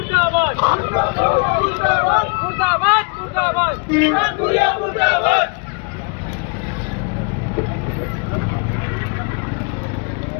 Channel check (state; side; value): quieter; right; 34.6 dB